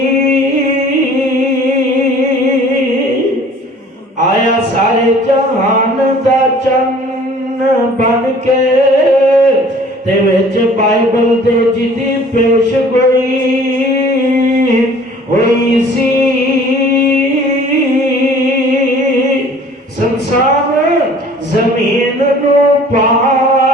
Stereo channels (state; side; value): normal; both; correlation 0.51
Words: آیا سارے جہان دا چن بن کے، تے وچ بائبل دے جدی پیش گوئی ہوئی سی۔ سنسار زمین نو